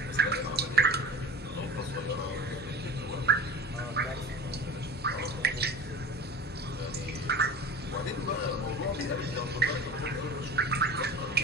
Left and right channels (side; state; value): both; normal; correlation 0.37